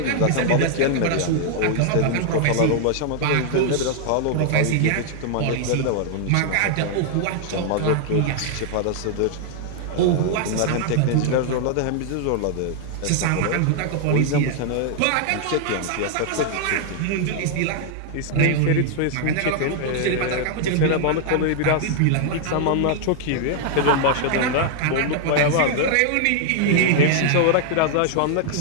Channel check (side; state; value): both; different; correlation 0.00